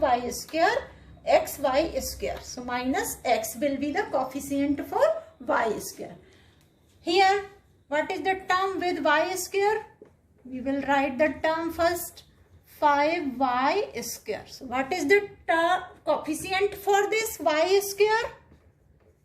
y square, xy square. So minus x will be the coefficient for y square. Here, what is the term with y square? We will write the term first, 5y square. So what is the coefficient for this y square?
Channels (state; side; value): identical; both; correlation 1.00